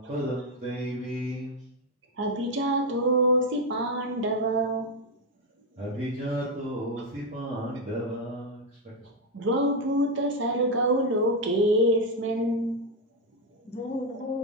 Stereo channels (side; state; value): both; normal; correlation 0.06